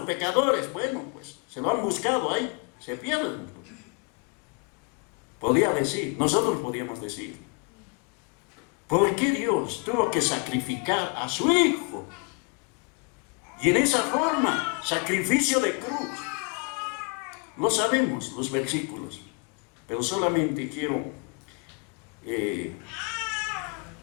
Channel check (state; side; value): quieter; right; 34.7 dB